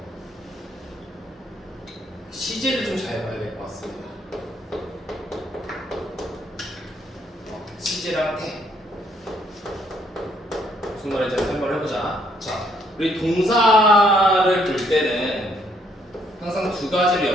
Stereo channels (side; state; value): both; normal; correlation 0.69